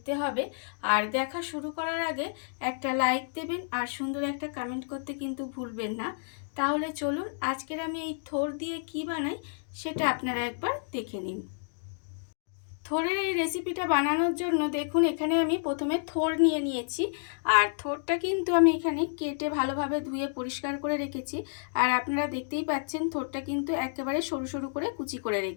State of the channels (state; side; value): silent; right; digital silence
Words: হবে। আর দেখা শুরু করার আগে একটা লাইক দেবেন আর সুন্দর একটা কমেন্ট করতে কিন্তু ভুলবেন না। তাহলে চলুন আজকের আমি এই থোড় দিয়ে কি বানাই সেটা আপনারা একবার দেখে নিন। থোড়ের এই রেসিপিটা বানানোর জন্য দেখুন এখানে আমি প্রথমে থোড় নিয়ে নিয়েছি। আর থোড়টা কিন্তু আমি এখানে কেটে ভালোভাবে ধুয়ে পরিষ্কার করে রেখেছি। আর আপনারা দেখতেই পাচ্ছেন থোড়টা কিন্তু একেবারে সরু সরু করে কুচি করে